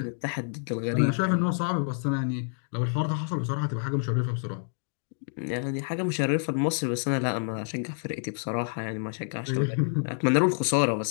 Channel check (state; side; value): silent; right; digital silence